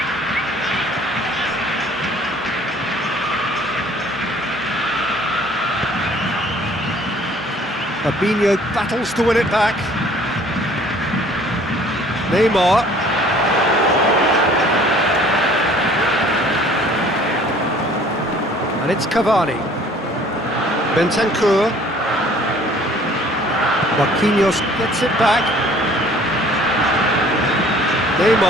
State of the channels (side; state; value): both; normal; correlation 0.54